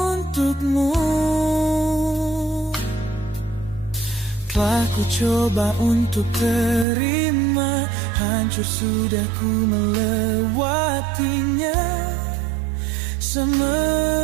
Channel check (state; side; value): drops out; left; at 6.9 s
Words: untukmu. Telah ku coba untuk terima, hancur sudah ku melewatinya.